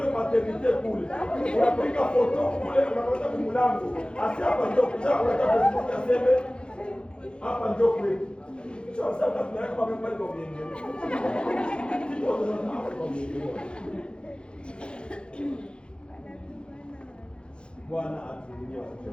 maternité kule. Unapiga foto kule unaweza kumlango. Asi hapa ndio kuja unataka Facebook aseme hapa ndio kwetu. Sasa tunaweka kwa Mihengero. Kitu tunataka kwa Mihengero. Bwana atulie.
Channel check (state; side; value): late; right; 0.054 ms